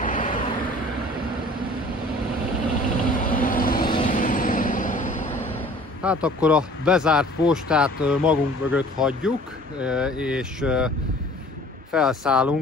Hát akkor a bezárt postát magunk mögött hagyjuk, és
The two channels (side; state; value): both; normal; correlation 0.49